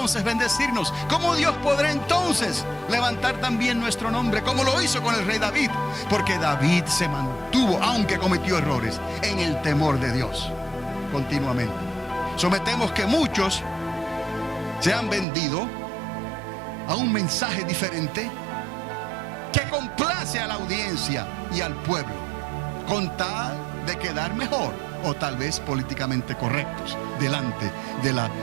bendecirnos? ¿Cómo Dios podrá entonces levantar también nuestro nombre, como lo hizo con el rey David? Porque David se mantuvo, aunque cometió errores, en el temor de Dios continuamente. Sometemos que muchos se han vendido a un mensaje diferente que complace a la audiencia y al pueblo, con tal de quedar mejor, o tal vez políticamente correctos delante de la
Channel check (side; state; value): left; drops out; at 15.2 s